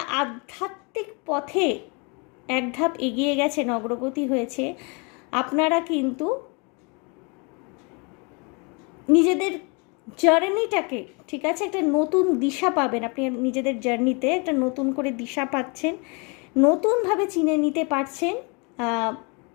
আধ্যাত্মিক পথে এক ধাপ এগিয়ে গেছেন, অগ্রগতি হয়েছে, আপনারা কিন্তু নিজেদের জার্নিটাকে, ঠিক আছে, একটা নতুন দিশা পাবেন। আপনি নিজেদের জার্নিতে একটা নতুন করে দিশা পাচ্ছেন, নতুনভাবে চিনে নিতে পারছেন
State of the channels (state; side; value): quieter; right; 32.0 dB